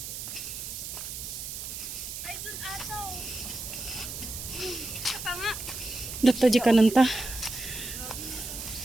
Dito di ka nanta.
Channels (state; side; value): noise; right; hiss, 7 dB below the sound